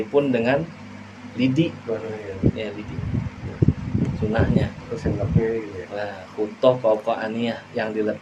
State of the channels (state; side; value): identical; both; correlation 1.00